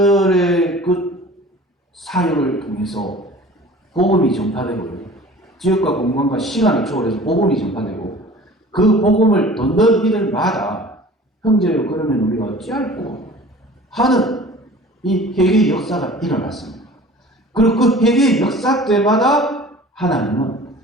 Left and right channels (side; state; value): both; normal; correlation 0.44